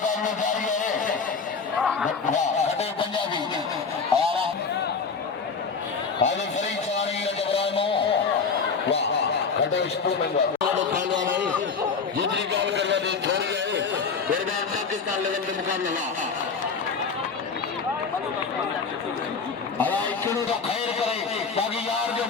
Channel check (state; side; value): quieter; right; 5.2 dB